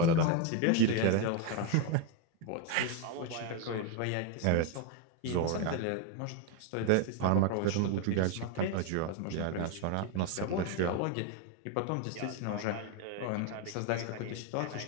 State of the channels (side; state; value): both; different; correlation 0.01